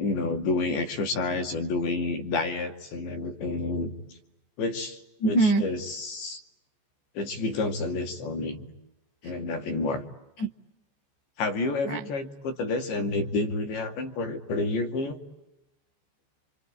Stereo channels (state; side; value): late; right; 14 ms